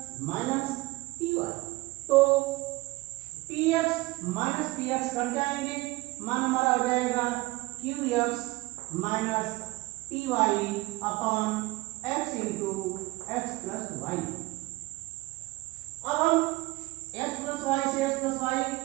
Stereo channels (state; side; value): quieter; left; 21.4 dB